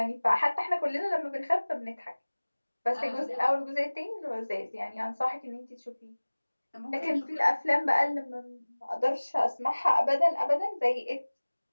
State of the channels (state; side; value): inverted; both; correlation -1.00